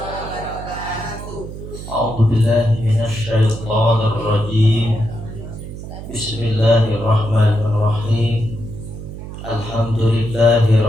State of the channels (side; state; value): right; noise; hum, 11 dB below the sound